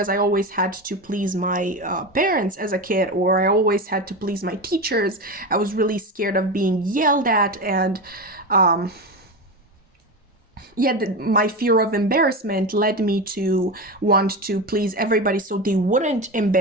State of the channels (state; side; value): normal; both; correlation 0.21